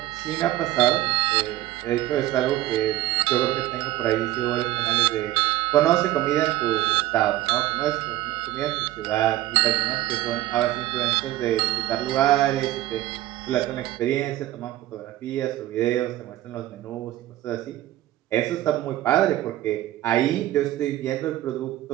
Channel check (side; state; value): left; quieter; 15.2 dB